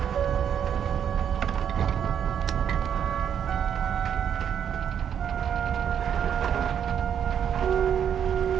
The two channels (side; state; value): left; quieter; 8.6 dB